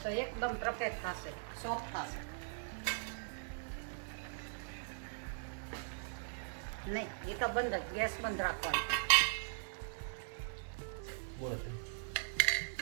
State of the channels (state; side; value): silent; left; 51 dB below the other